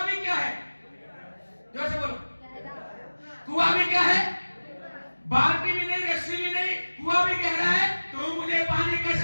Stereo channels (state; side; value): inverted; both; correlation -1.00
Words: भी क्या है? जोर से बोलो। कुआं भी क्या है? बाल्टी भी नहीं, रस्सी भी नहीं, कुआं भी कह रहा है तू मुझे पानी